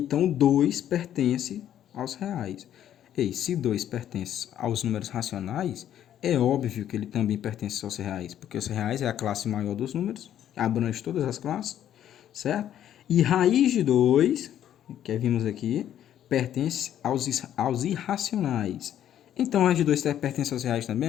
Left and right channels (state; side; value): quieter; right; 10.9 dB